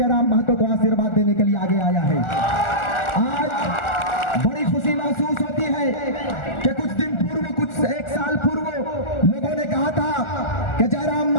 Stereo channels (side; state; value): right; late; 1.4 ms